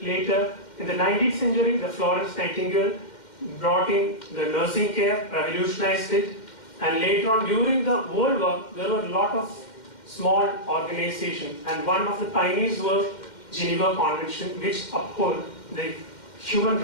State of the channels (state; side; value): late; right; 2.1 ms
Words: Later, in the 19th century, the Florence Nightingale brought in the nursing care, revolutionized it, and later on during the World War, there were a lot of small organizations, and one of the pioneers was Geneva Convention, which uphold the human